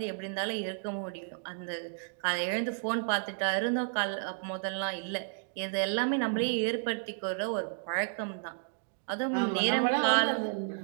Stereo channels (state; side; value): silent; left; digital silence